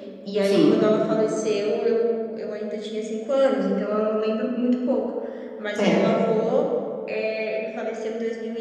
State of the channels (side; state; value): both; identical; correlation 1.00